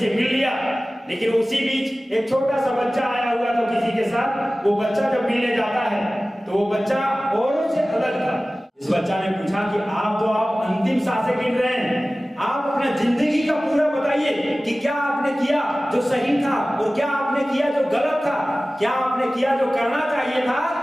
मिल लिया। लेकिन उसी बीच एक छोटा सा बच्चा आया हुआ था किसी के साथ। वो बच्चा जब मिलने जाता है तो वो बच्चा औरों से अलग था। इस बच्चा ने पूछा कि आप अंतिम सांसें गिन रहे हैं, आप अपना जिंदगी का पूरा बताइए कि क्या आपने किया जो सही था और क्या आपने किया जो गलत था, क्या आपने किया जो करना चाहिए था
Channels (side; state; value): both; normal; correlation 0.97